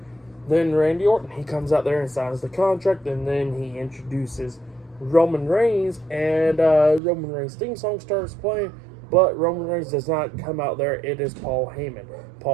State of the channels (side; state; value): left; drops out; at 7.0 s